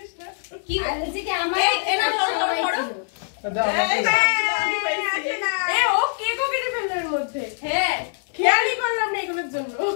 কি বলছি কি আমার এনা সবাই ছিল। ও কেকও কেটে ফেললো এর মধ্যে। হ্যাঁ খেয়ালই করলাম না এগুলোর জন্য।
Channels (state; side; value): silent; right; 63 dB below the other